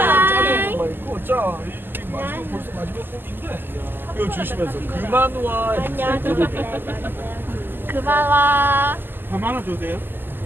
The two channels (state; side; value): late; left; 0.094 ms